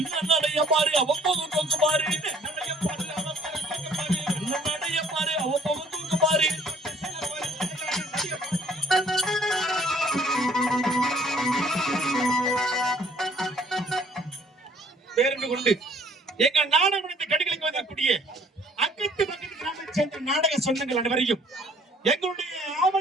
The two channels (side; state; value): both; normal; correlation 0.59